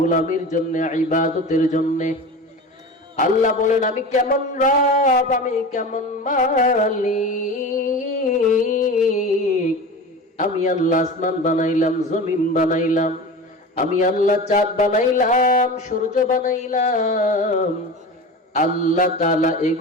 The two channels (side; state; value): both; normal; correlation 0.31